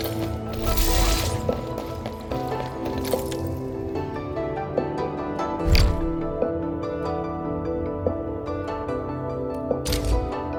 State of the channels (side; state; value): both; identical; correlation 1.00